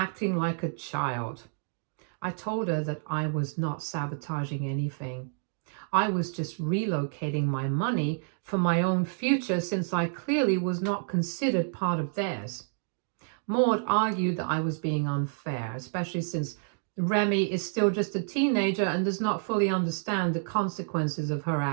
like a child. I told her that I was not sabotaging anything. I was just relocating my money for my own future since I clearly was not considered part of theirs. Maud argued that I was being unfair, especially since Remi is still just a teenager and does not fully understand the consequences of her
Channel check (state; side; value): silent; left; digital silence